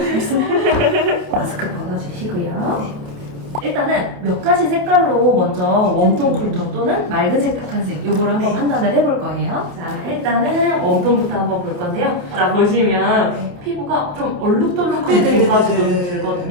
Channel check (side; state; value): left; late; 28 ms